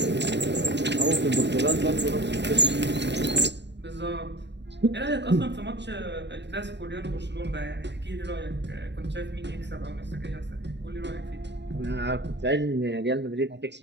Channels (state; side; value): late; left; 0.51 ms